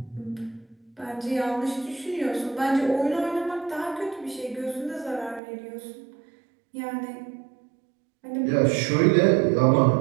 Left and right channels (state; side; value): drops out; left; at 5.4 s